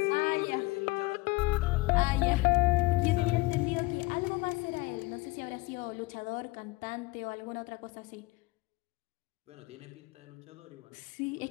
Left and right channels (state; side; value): quieter; right; 22.4 dB